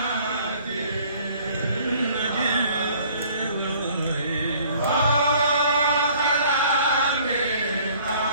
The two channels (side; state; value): both; inverted; correlation -0.55